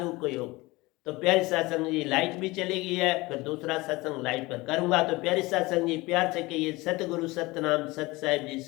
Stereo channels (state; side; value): quieter; right; 21.8 dB